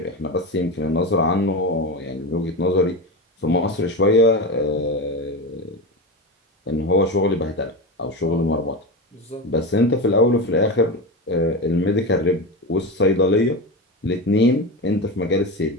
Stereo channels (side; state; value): both; normal; correlation 0.20